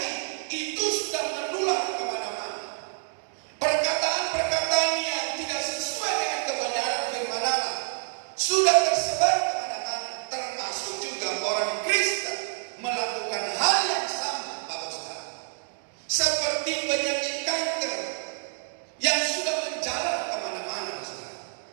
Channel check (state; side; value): silent; left; digital silence